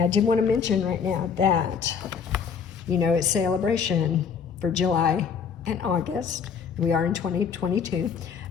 I did want to mention right now that, you know, it's celebration for July and August. We are in 2022,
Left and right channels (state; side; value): quieter; right; 6.6 dB